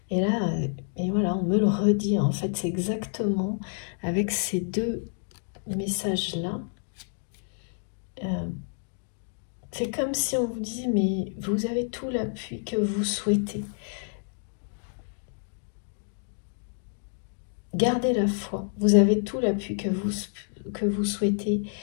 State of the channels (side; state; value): right; silent; digital silence